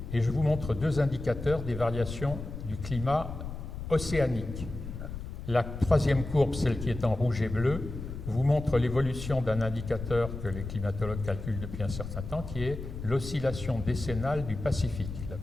et je vous montre 2 indicateurs des variations du climat océanique. La troisième courbe, celle qui est en rouge et bleu, vous montre l'évolution d'un indicateur que les climatologues calculent depuis un certain temps, qui est l'oscillation décennale du Pacifique. La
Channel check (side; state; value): left; noise; rumble, 8 dB below the sound